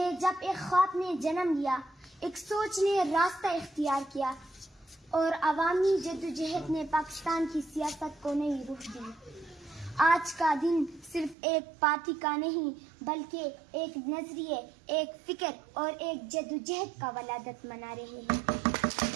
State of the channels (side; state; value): left; drops out; at 11.4 s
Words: جب ایک خواب نے جنم لیا، ایک سوچ نے راستہ اختیار کیا اور عوامی جدوجہد نے پاکستان کی سیاست کو نئی رخ دی۔ آج کا دن صرف ایک پارٹی کا نہیں بلکہ ایک نظریے، ایک فکر اور ایک جدوجہد کا ولادت منا رہے ہیں۔